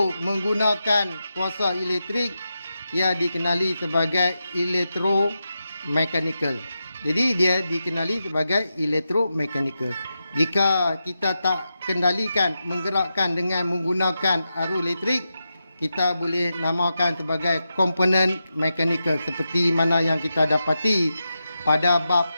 menggunakan kuasa elektrik, ia dikenali sebagai elektromekanikal. Jadi dia dikenali sebagai elektromekanikal. Jika kita tak kendalikan menggerakkan dengan menggunakan arus elektrik, kita boleh namakan sebagai komponen mekanikal seperti mana yang kita dapati pada bab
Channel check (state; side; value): inverted; both; correlation -0.89